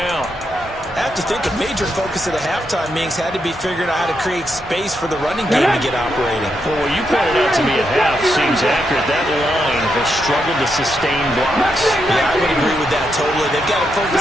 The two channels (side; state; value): both; normal; correlation 0.82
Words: I have to think a major focus of the halftime meetings had to be figuring out how to create space for the running game to get operating. Well, what you pointed out to me at half seems accurate. That line has struggled to sustain blocks. Yeah, I would agree with that totally. They've got to